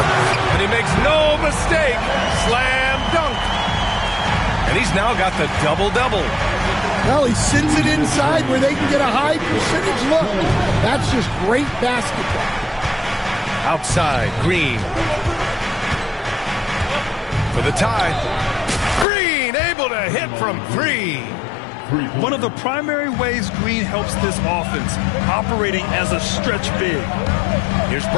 And he makes no mistake. Slam dunk. And he's now got the double-double. Well, he sends it inside where they can get a high percentage look. That's just great basketball. Outside, Green. For the tie. Green able to hit from 3. One of the primary ways Green helps this offense, operating as a stretch big. Here's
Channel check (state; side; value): drops out; right; at 19.1 s